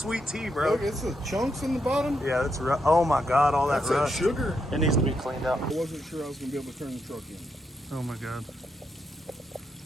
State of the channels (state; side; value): normal; both; correlation 0.81